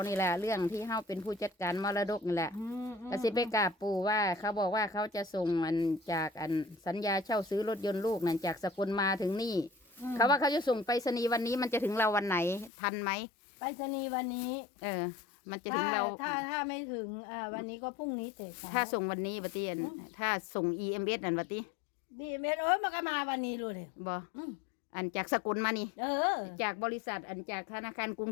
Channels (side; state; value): right; drops out; at 12.7 s